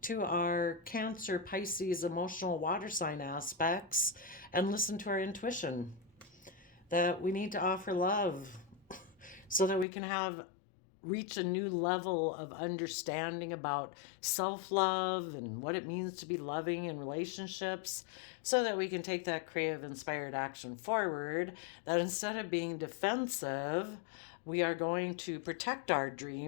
to our Cancer, Pisces, emotional water sign aspects, and listen to our intuition that we need to offer love so that we can have reach a new level of understanding about self-love and what it means to be loving in relationships, so that we can take that creative inspired action forward, that instead of being defensive, we are going to protect our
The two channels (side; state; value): right; drops out; at 9.9 s